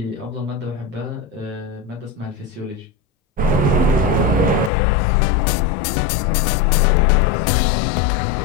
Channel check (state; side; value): drops out; right; at 4.7 s